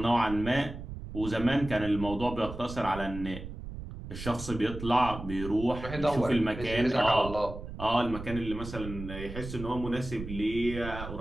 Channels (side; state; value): right; noise; rumble, 10 dB below the sound